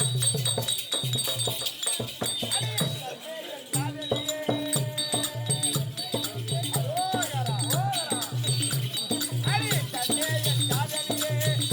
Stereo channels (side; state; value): both; identical; correlation 1.00